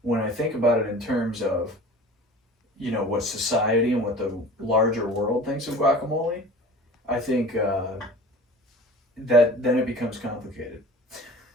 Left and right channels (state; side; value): normal; both; correlation 0.40